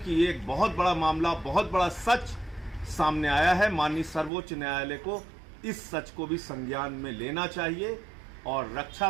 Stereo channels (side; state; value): left; drops out; at 4.3 s